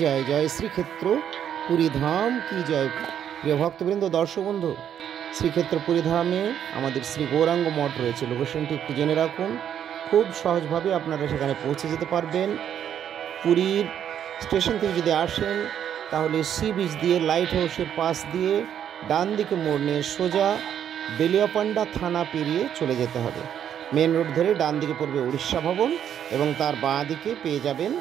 जय श्रीक्षेत्र पुरी धाम की जय। প্রিয় ভক্তবৃন্দ, দর্শক বন্ধু, শ্রীক্ষেত্র পুরী ধামে আমাদের শ্রী গৌরাঙ্গ মঠ রয়েছে। লোকেশনটি একটু জেনে রাখুন, খুব সহজভাবে আপনারা সেখানে পৌঁছে যেতে পারবেন। পুরীর স্টেশন থেকে যদি আসেন তাহলে সি বিচ দিয়ে লাইট হাউসের পাশ দিয়ে ডান দিকে মোড় নিয়ে সোজা বেলিয়াপান্ডা থানা পেরিয়ে চলে যেতে হবে। মেন রোড ধরে ডান দিকে পড়বে উড়িষ্যা ভবন এবং তার বাঁ দিকে পেয়ে যাবেন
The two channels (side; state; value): left; quieter; 9.4 dB